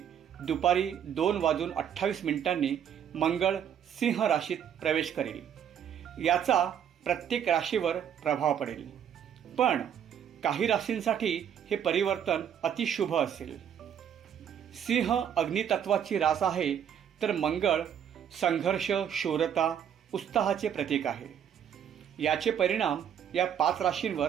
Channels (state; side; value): quieter; left; 8.9 dB